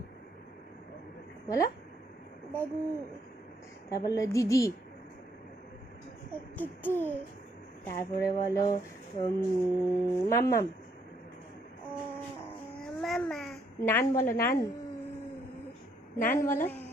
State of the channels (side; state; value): both; normal; correlation 0.71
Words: বলো। দাদু, তারপর বলো দিদি, দিদি, তারপরে বলো মাম্মাম। মামা, নান বলো, নান, নান বলো,